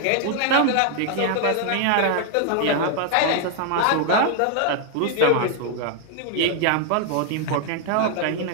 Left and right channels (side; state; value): both; different; correlation 0.00